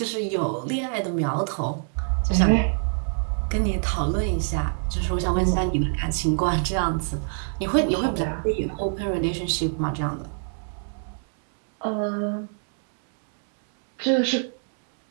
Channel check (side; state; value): left; silent; digital silence